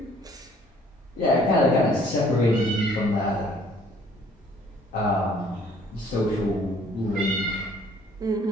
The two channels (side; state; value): both; normal; correlation 0.58